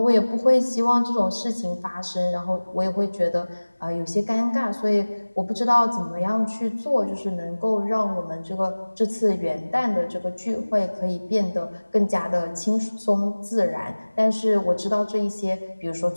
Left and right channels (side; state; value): both; inverted; correlation -1.00